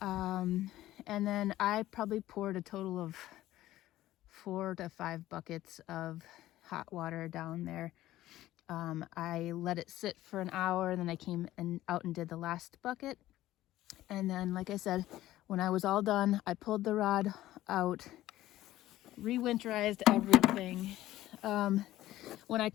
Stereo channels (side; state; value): right; quieter; 14.9 dB